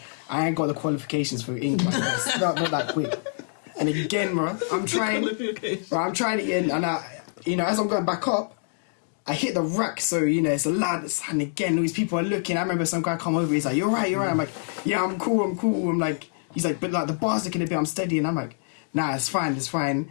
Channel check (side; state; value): right; silent; digital silence